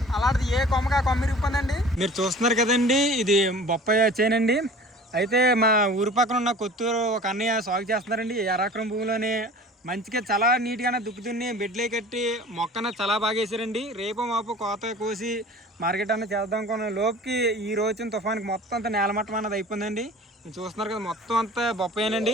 అలాంటిది ఏ కొమ్మగా కొమ్మ ఇరిగిపోయిందండి. మీరు చూస్తున్నారు కదండి, ఇది బొప్పాయి చేనండి. అయితే మా ఊరి పక్కన ఉన్న కొత్తూరు ఒక అన్నయ్య సాగు చేస్తున్నారండి. 1 ఎకరం భూమిలోనే మంచిగా చాలా నీట్గానే దుక్కుతున్ని బెడ్లే కట్టి మొక్కన చాలా బాగా వేసారండి. రేపు మాపు కోత కోసి మార్కెట్ అన్న చేద్దాం అనుకున్న లోపుకి ఈ రోజున తుఫానికి మొత్తం అంతా నేలమట్టం అన్నది అయిపోయిందండి. చూస్తున్నారు కదా, మొత్తం అంతా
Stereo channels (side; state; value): both; normal; correlation 0.43